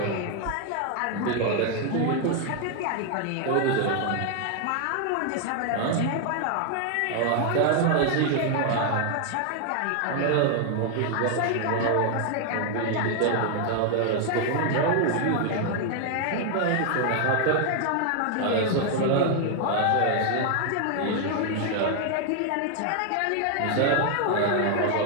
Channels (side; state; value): both; different; correlation 0.00